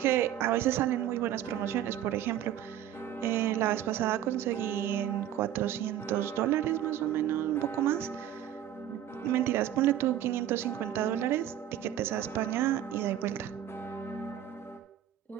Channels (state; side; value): quieter; left; 11.3 dB